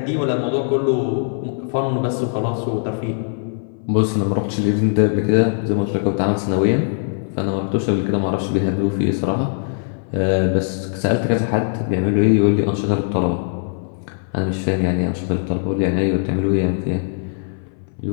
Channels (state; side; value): silent; right; 59 dB below the other